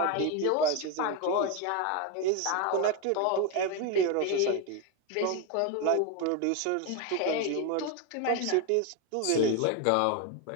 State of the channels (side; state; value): both; different; correlation 0.02